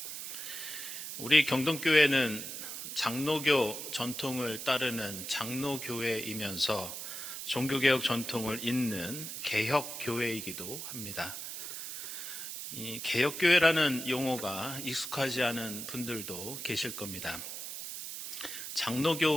우리 경동교회는 장로교 전통을 따르는 장로교회이면서 종교개혁 전통을 잇는 개혁교회이기도 합니다. 이 개혁교회라는 용어가 익숙하지 않은 분들도 계실 겁니다.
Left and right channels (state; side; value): noise; right; hiss, 7 dB below the sound